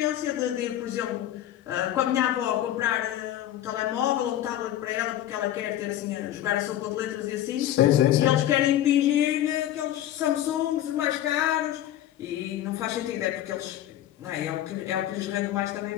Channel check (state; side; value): quieter; right; 12.4 dB